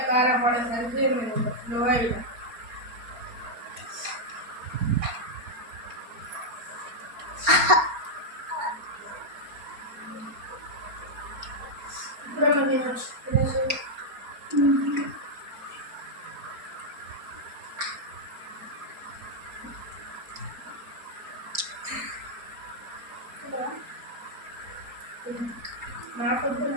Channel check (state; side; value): late; left; 4.3 ms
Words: కారం పడేసరికి నేను స్లో అయినా. ఇప్పుడేమో తినచ్చు తినేసి నాకొద్దు